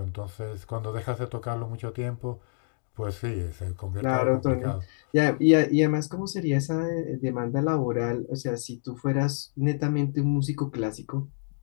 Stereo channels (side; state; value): right; silent; digital silence